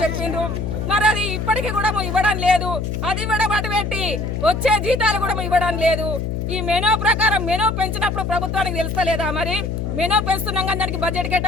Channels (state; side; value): noise; left; hum, 3 dB below the sound